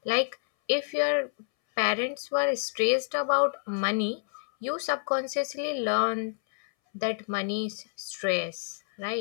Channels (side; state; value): right; silent; 59 dB below the other